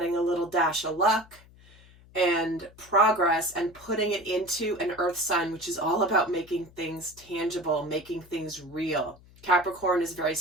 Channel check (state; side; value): noise; left; hum, 25 dB below the sound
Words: a little dash of luck and progress, and putting it into an earth sign, which is all about making things tangible, making things real. Capricorn is very